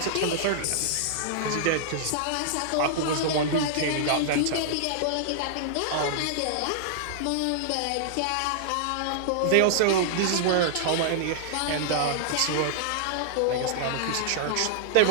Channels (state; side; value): different; both; correlation -0.01